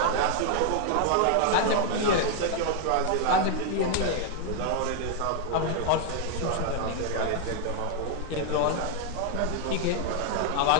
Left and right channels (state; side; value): different; both; correlation 0.00